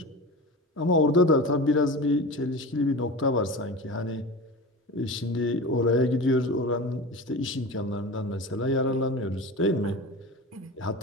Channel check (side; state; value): both; normal; correlation 0.30